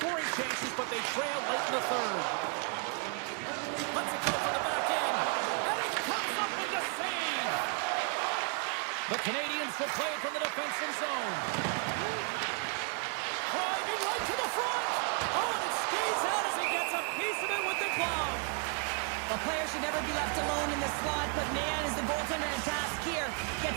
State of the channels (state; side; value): quieter; left; 38.3 dB